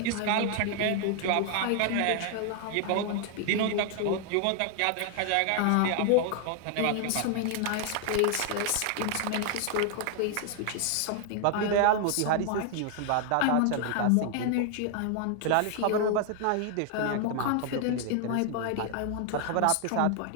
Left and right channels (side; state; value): both; different; correlation 0.00